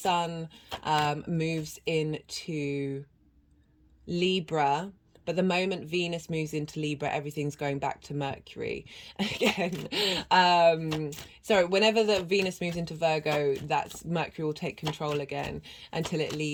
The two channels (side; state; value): both; identical; correlation 1.00